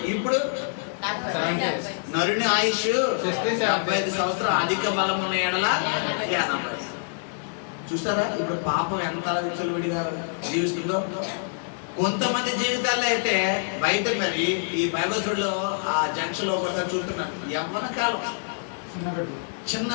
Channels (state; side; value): silent; right; 57 dB below the other